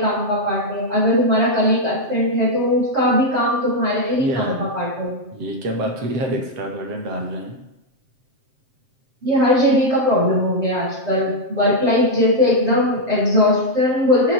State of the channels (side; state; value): left; late; 7.6 ms